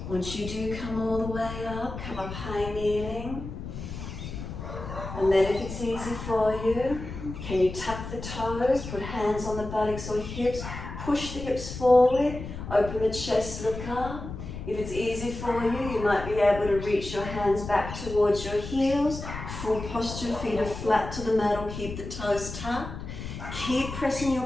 Once you do come all the way up, come up high kneeling. And then if it's easy for you, can you tuck the toes, put hands on the buttocks or hips, push the hips forward, open the chest, look up. If it's easy for you, you might be able to reach your hands back towards your heels. Full posture, feet are flat to the mat or keep the toes tucked. Keep pressing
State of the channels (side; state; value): left; noise; rumble, 9 dB below the sound